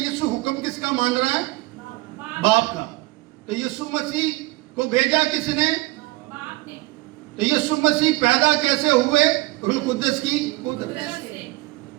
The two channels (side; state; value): left; quieter; 21.5 dB